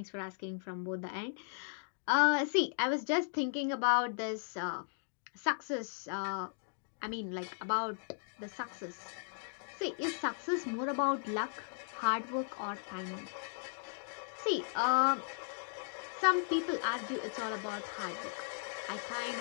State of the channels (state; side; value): silent; right; digital silence